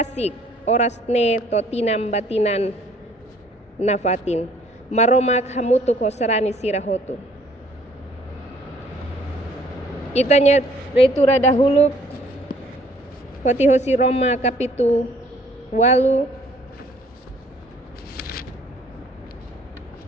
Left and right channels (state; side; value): normal; both; correlation 0.59